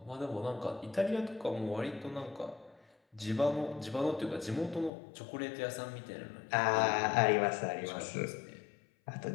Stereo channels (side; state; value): right; drops out; at 4.9 s